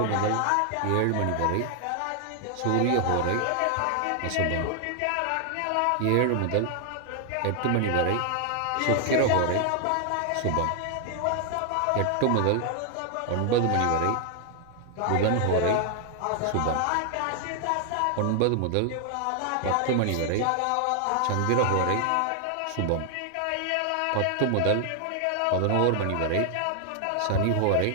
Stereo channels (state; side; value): different; both; correlation 0.00